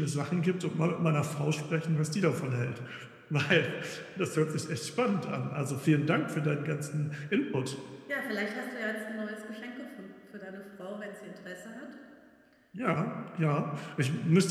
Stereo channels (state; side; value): identical; both; correlation 1.00